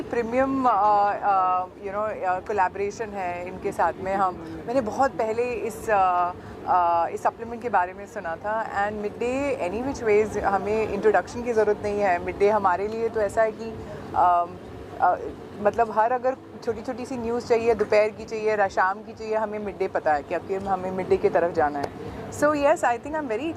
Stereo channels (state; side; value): identical; both; correlation 1.00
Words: प्रीमियम कोलैबोरेशन है इनके साथ में। मैंने बहुत पहले इस सप्लीमेंट के बारे में सुना था, and Midday any which ways हमें इंट्रोडक्शन की ज़रूरत नहीं है। मिड डे हमारे लिए तो ऐसा है कि मतलब हर अगर छोटी छोटी सी न्यूज़ चाहिए, दोपहर की चाहिए, शाम की चाहिए, हमें मिड डे पता है कि अब हमें मिड डे की तरफ जाना है। So yes, I think I'm very